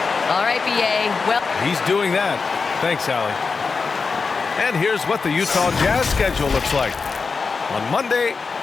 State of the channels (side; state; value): right; quieter; 4.8 dB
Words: All right, B.A. Well, he's doing that. Thanks, Allie. And here's what the Utah Jazz schedule looks like. On Monday,